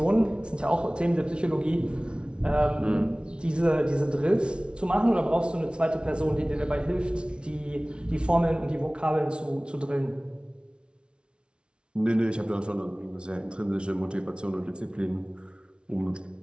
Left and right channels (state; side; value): late; left; 0.057 ms